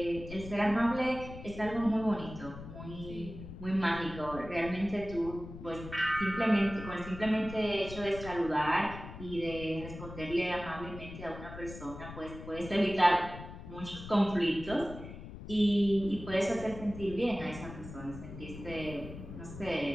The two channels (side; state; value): left; noise; rumble, 12 dB below the sound